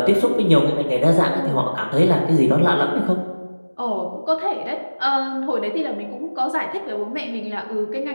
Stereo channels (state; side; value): inverted; both; correlation -1.00